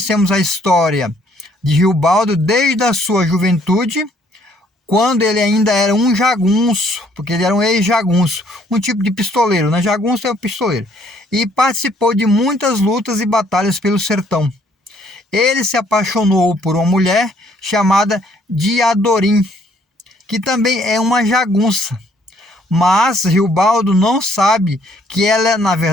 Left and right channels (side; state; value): both; normal; correlation 0.65